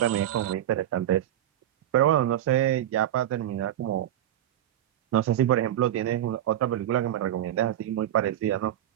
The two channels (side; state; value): left; quieter; 12.0 dB